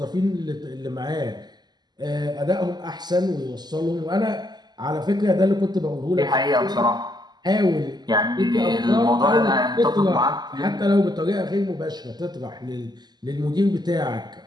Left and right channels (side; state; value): left; late; 0.20 ms